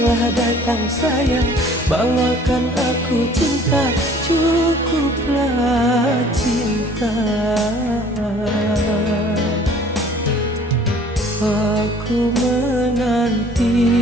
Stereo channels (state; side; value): normal; both; correlation 0.53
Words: datang sayang, bawakan aku cinta, cukuplah cinta. Aku menanti